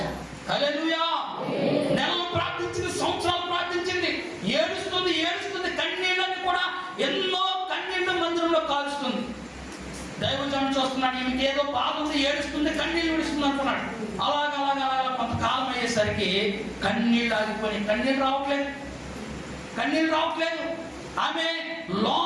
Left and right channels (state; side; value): identical; both; correlation 1.00